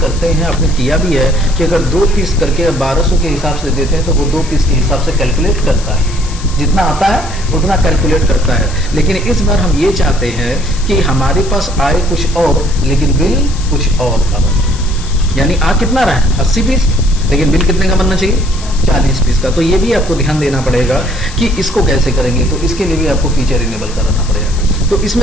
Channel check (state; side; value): noise; left; hiss, 15 dB below the sound